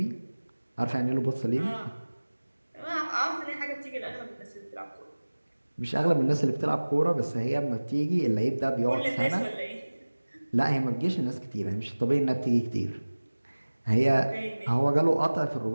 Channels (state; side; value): inverted; both; correlation -1.00